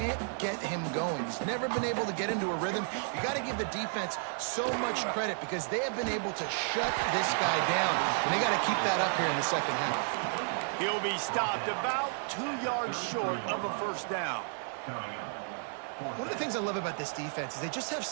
get him going. He's never been able to get into a rhythm. You got to give the defense so much credit because they have been able to shut this guy down. And they got to keep that up here in the second half. He'll be stopped about 2 yards short of a first down. One of the things I love about this defense is they just have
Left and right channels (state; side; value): silent; left; 56 dB below the other